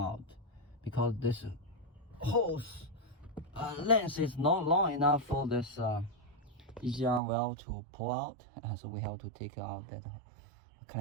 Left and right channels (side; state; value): left; drops out; at 7.2 s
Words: because this hose length is not long enough for this EGR valve to pull out, so we have to take out that